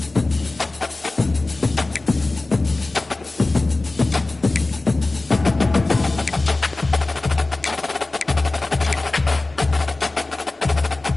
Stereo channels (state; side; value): quieter; right; 3.1 dB